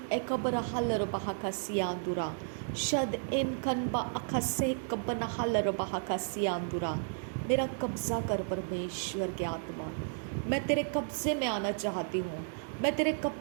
एकबर हलर बहाका सियांदुरा। शद इन कनबा अखा सह कबना हलर बहाका सियांदुरा। मेरा कब्ज़ा कर परमेश्वर के आत्मा। मैं तेरे कब्ज़े में आना चाहती हूँ। मैं तेरे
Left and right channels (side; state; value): left; silent; digital silence